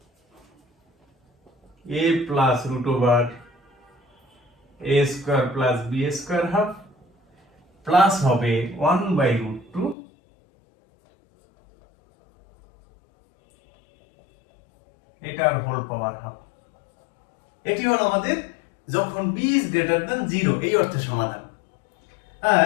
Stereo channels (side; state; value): right; drops out; at 10.0 s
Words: a plus root over a square plus b square half plus হবে 1/√2 এটার হোল পাওয়ার হাফ। এটি হলো আমাদের যখন b ইজ গ্রেটার দ্যান 0 এই অর্থে সমাধান। আর